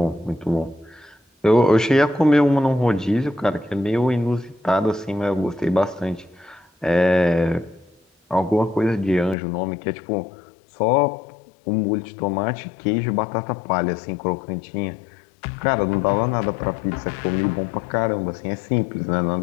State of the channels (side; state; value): right; drops out; at 9.3 s